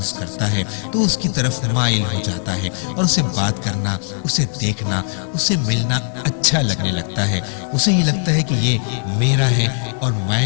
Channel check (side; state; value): right; silent; 62 dB below the other